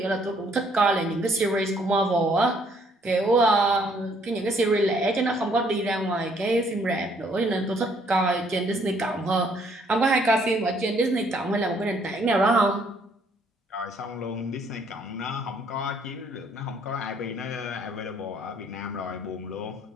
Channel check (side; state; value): both; normal; correlation 0.66